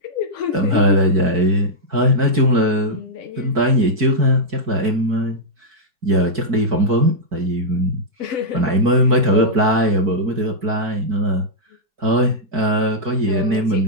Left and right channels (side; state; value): left; late; 4.6 ms